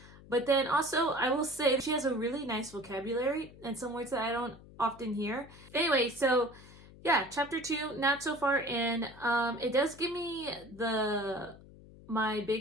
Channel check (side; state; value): left; noise; hum, 20 dB below the sound